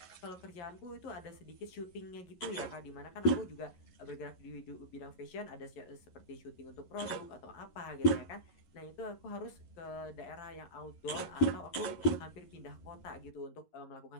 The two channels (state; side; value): late; right; 11 ms